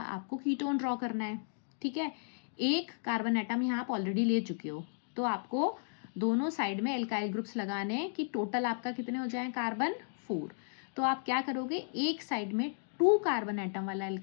कीटोन ड्रॉ करना है, ठीक है। एक कार्बन एटम यहाँ आप ऑलरेडी ले चुके हो, तो आपको दोनों साइड में एल्काइल ग्रुप्स लगाने हैं कि टोटल आपका कितने हो जाए कार्बन? 4। तो आप क्या करोगे, एक साइड में 2 कार्बन एटम वाला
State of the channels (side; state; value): right; silent; digital silence